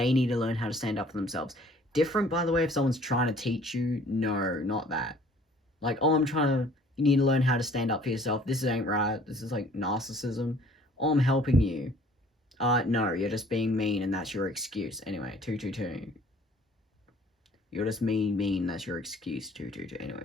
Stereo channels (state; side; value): normal; both; correlation 0.55